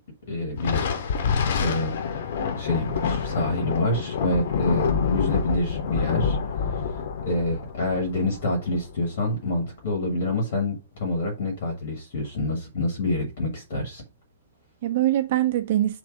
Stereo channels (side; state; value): both; inverted; correlation -0.50